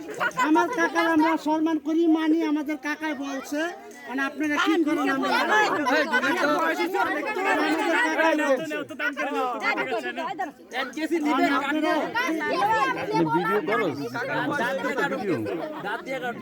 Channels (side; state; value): both; identical; correlation 1.00